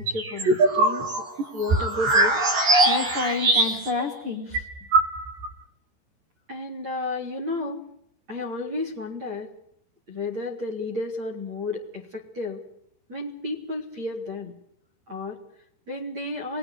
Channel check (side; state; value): left; late; 14 ms